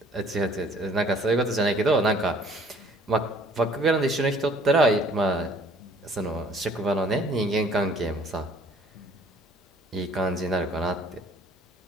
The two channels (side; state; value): both; normal; correlation 0.57